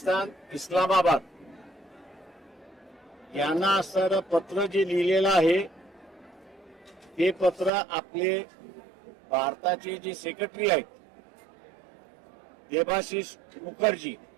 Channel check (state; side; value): drops out; left; at 7.7 s